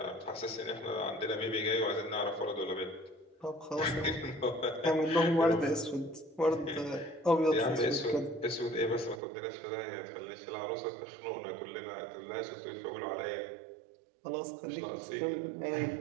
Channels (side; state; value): left; drops out; at 9.2 s